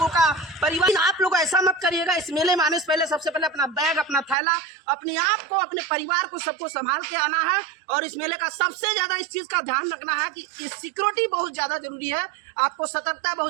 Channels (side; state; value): left; drops out; at 4.4 s